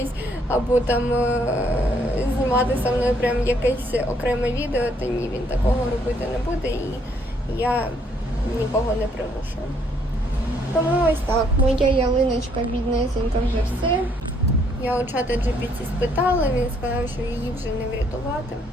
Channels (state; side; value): normal; both; correlation 0.68